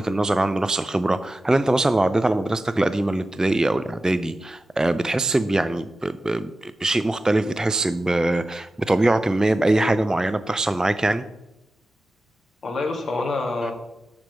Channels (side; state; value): both; normal; correlation 0.94